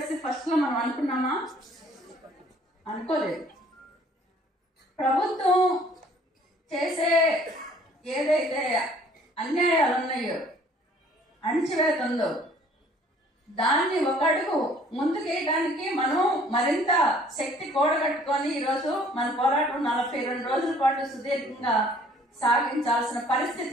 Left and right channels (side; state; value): both; normal; correlation 0.56